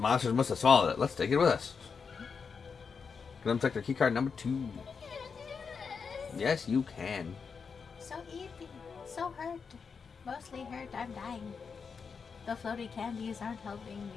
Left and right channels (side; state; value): right; quieter; 5.7 dB